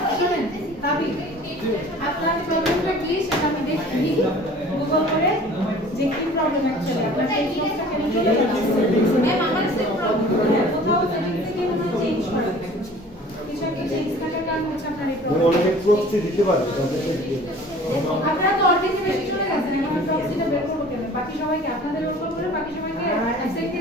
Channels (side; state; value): both; normal; correlation 0.47